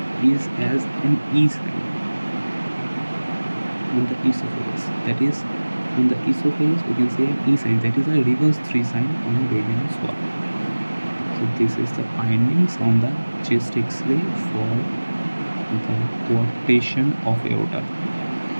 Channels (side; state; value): both; inverted; correlation -1.00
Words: is as an E sign on the esophagus, that is on the esophagus we can see an E sign, that is a reverse 3 sign on barium swab. So this is the findings on the chest X-ray for the coarctation of aorta.